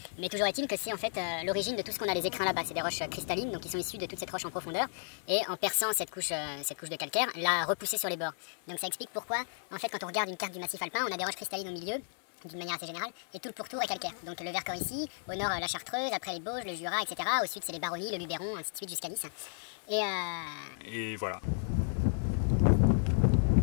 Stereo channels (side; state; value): right; silent; digital silence